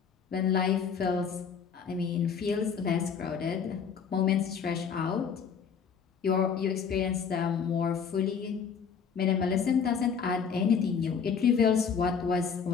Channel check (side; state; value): right; quieter; 6.6 dB